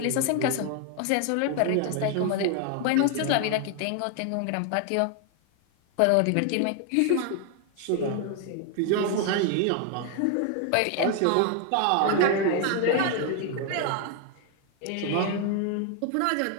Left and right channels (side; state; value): both; different; correlation 0.00